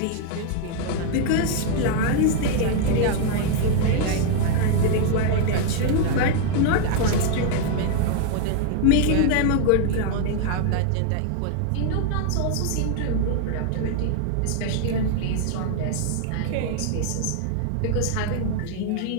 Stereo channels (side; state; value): both; different; correlation 0.00